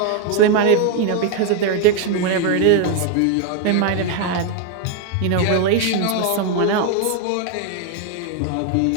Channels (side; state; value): both; different; correlation 0.01